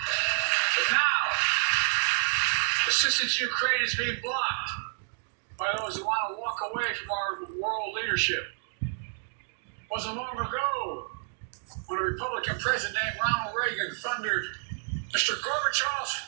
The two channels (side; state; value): left; silent; digital silence